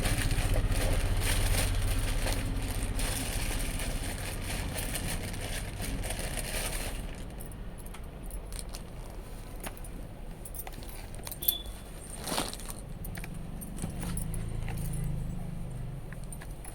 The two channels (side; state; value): both; identical; correlation 1.00